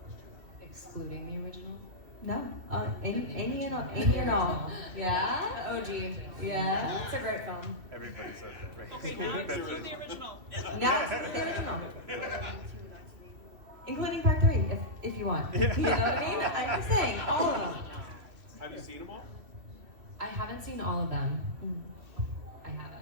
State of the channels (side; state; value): left; late; 2.7 ms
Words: Excluding the original? No? Any and all. Yeah? OG. Yeah? It's a great film. Everybody says it. Okay, now exclude the original. Now it's the original. Including part 3, if you want. You know what I mean? I'm just saying, all of them. Have you seen them all? I haven't seen all of them. I